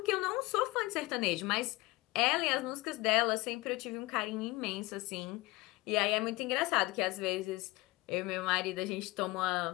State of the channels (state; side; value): quieter; right; 21.6 dB